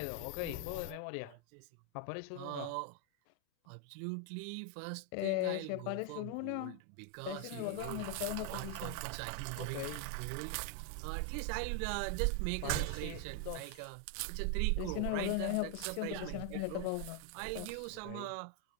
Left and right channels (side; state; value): both; different; correlation 0.00